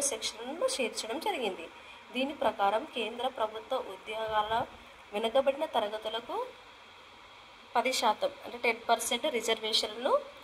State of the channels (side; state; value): both; identical; correlation 1.00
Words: సెక్షన్ను చేర్చడం జరిగింది. దీని ప్రకారం కేంద్ర ప్రభుత్వ ఉద్యోగాల వెనుకబడిన తరగతులకు 10% అంటే 10% రిజర్వేషన్లను